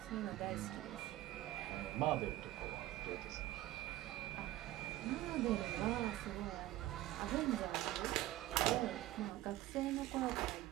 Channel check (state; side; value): quieter; left; 15.4 dB